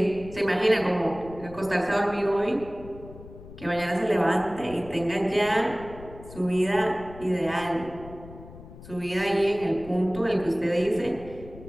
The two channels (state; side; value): noise; left; rumble, 17 dB below the sound